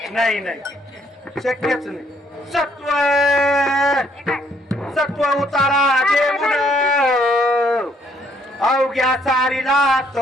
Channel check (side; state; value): both; normal; correlation 0.67